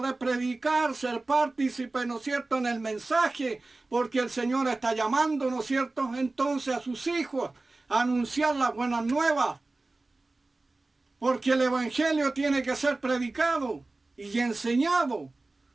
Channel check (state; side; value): quieter; left; 3.2 dB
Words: predicar, ser partícipe, ¿no es cierto?, en el mensaje, porque el Señor está llamando, ¿no es cierto?, entonces a sus hijos a anunciar las buenas nuevas, porque el Evangelio tiene que ser predicado y enseñado.